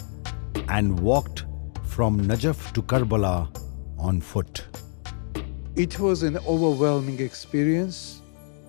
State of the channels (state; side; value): silent; right; digital silence